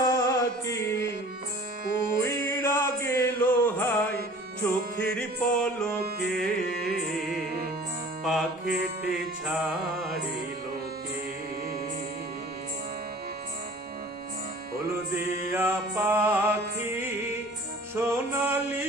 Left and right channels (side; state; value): both; normal; correlation 0.46